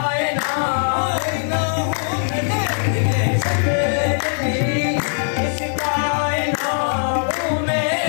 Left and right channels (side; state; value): right; silent; digital silence